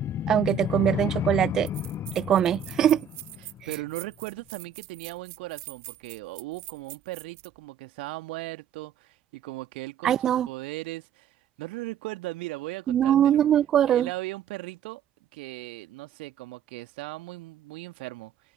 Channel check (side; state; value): left; quieter; 7.8 dB